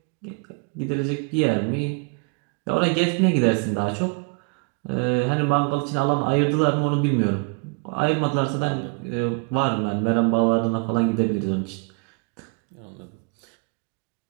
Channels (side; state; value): left; quieter; 33.0 dB